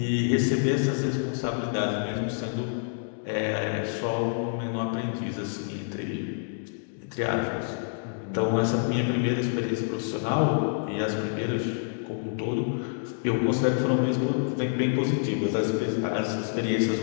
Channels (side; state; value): right; silent; digital silence